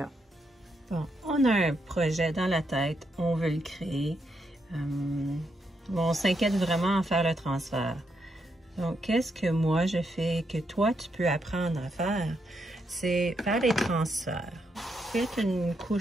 Bon, on a un projet dans la tête, on veut le créer. On s'inquiète vraiment à faire le transfert. Donc, qu'est-ce que moi je fais que toi, tu peux apprendre à faire? C'est faire les transferts. Faites une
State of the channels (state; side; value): normal; both; correlation 0.80